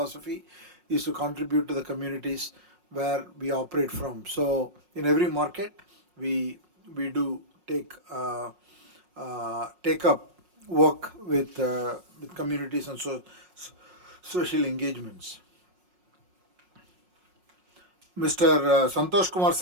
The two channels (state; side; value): late; left; 5.5 ms